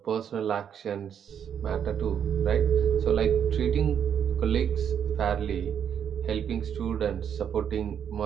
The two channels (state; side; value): quieter; left; 8.4 dB